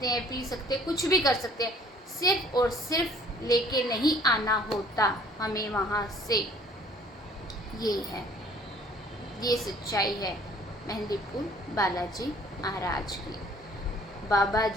हैं, पी सकते हैं, कुछ भी कर सकते हैं। सिर्फ और सिर्फ लेके नहीं आना होता हमें वहाँ से। ये है, ये सच्चाई है मेहंदीपुर बालाजी महाराज की। बाबा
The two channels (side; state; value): both; normal; correlation 0.56